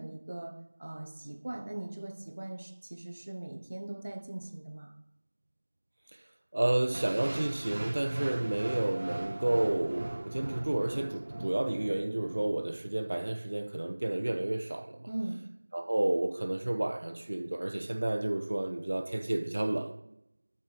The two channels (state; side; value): inverted; both; correlation -1.00